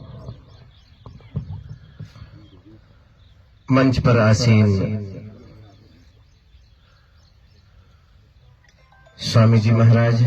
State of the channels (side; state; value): both; identical; correlation 1.00